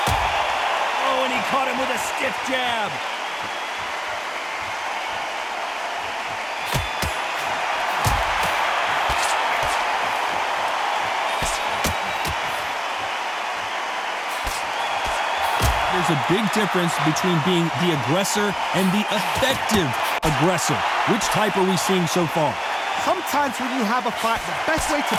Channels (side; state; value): both; identical; correlation 1.00